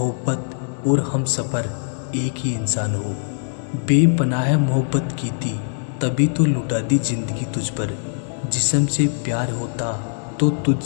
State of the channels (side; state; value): right; silent; 57 dB below the other